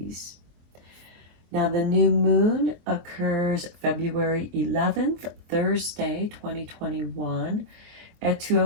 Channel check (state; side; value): late; left; 24 ms